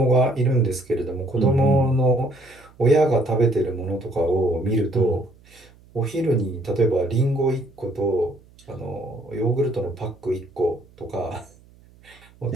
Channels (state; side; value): noise; right; hum, 27 dB below the sound